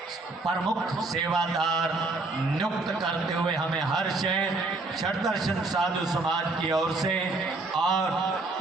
प्रमुख सेवादार नियुक्त करते हुए हमें हर्ष है। शरण दर्शन साधु समाज की ओर से और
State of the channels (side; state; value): left; quieter; 3.3 dB